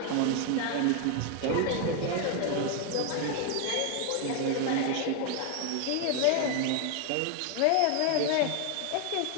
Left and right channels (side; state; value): both; different; correlation 0.00